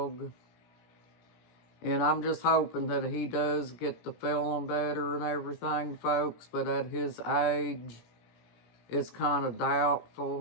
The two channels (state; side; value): late; right; 17 ms